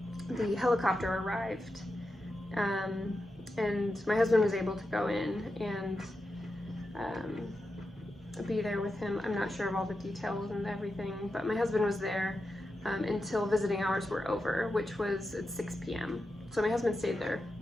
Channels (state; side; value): normal; both; correlation 0.89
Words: the helicopter arrived. And my husband was able to go in and be there with him. I'm not sure of all the details and everything, but my husband was there until visiting hours were over, which was at 6 p.m. So my husband stayed there